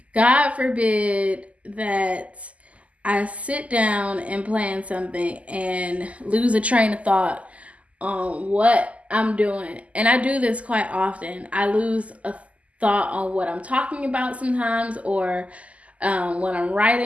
God forbid that I sit down and plan something and lose a train of thought on what I'm doing. And I do this quite often. I lose a thought on what I'm talking about sometimes or when I'm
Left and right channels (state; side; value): late; left; 0.067 ms